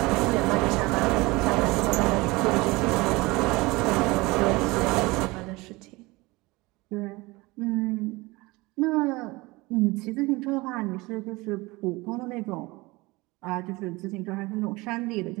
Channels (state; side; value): quieter; left; 22.8 dB